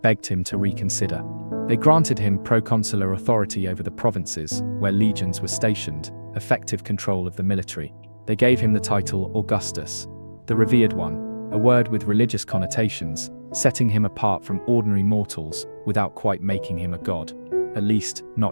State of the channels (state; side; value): inverted; both; correlation -1.00